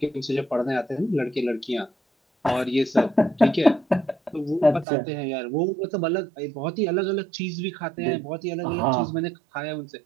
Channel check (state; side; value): drops out; left; at 4.9 s